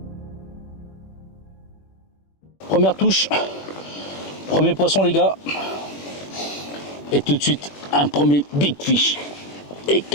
Première touche, premier poisson les gars, et tout de suite un premier big fish. Et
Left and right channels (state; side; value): late; right; 21 ms